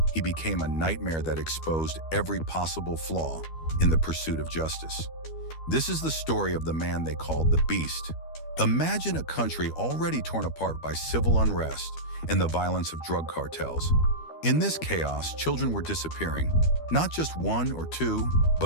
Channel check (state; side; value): late; right; 12 ms